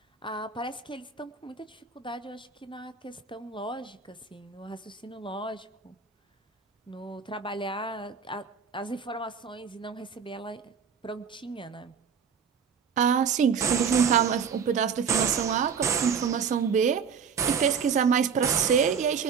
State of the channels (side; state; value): left; quieter; 6.6 dB